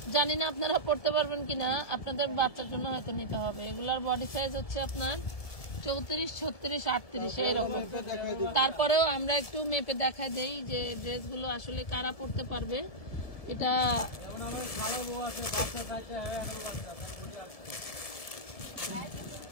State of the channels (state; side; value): late; right; 1.7 ms